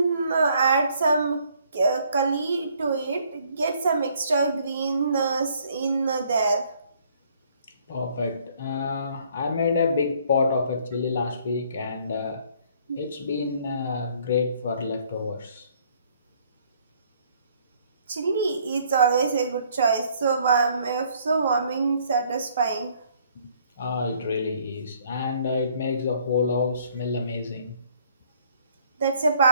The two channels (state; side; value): inverted; both; correlation -0.62